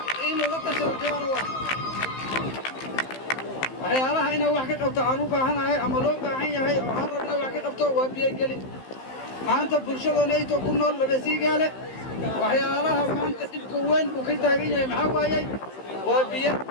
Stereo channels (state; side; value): late; right; 15 ms